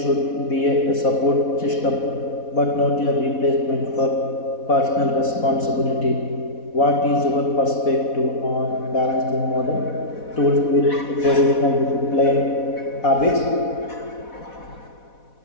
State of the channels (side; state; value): right; late; 4.1 ms